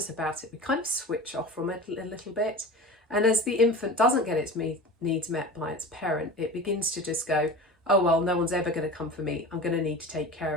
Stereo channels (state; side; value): normal; both; correlation 0.34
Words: about it, we kind of switch off from it a little bit. And as the infant doesn't get its needs met by its parent, it begins to just go, oh, well, no one's ever going to come for me. I'm going to need to take care